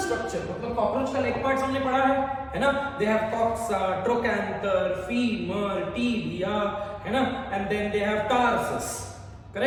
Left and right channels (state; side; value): identical; both; correlation 1.00